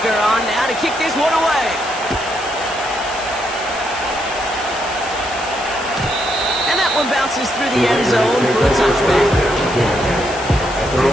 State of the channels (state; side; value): noise; left; hiss, 14 dB below the sound